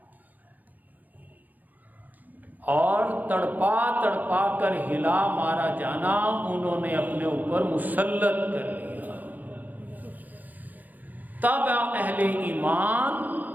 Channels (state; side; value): late; left; 0.084 ms